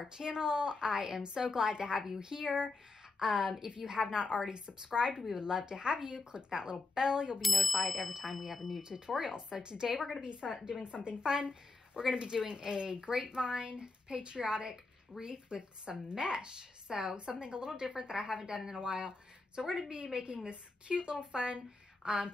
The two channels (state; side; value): quieter; right; 3.7 dB